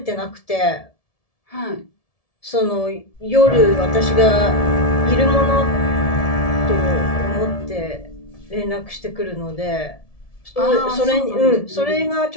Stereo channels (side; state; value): right; late; 1.7 ms